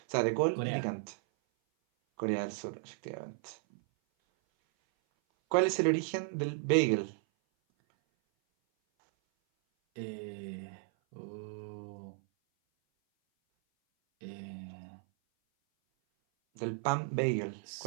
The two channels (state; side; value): silent; left; 55 dB below the other